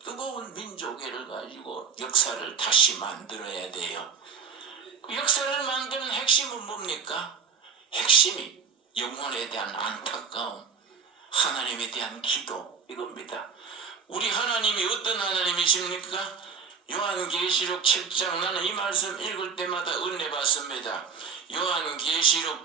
뜨거운 민족애를 가지고 역사를 다시 만들어야 돼요. 그 역사를 만드는 핵심은 뭡니까? 핵심이 영혼에 대한 안타까움, 하나님에 대한 기도, 이겁니다. 우리 하나님이 어떤 하나님이십니까? 요한계시록 7장, 나는 이 말씀 읽을 때마다 은혜 받습니다. 요한계시록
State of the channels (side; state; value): left; quieter; 6.3 dB